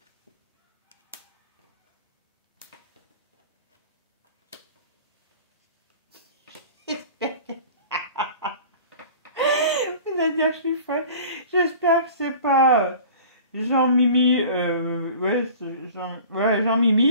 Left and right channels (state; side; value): inverted; both; correlation -0.43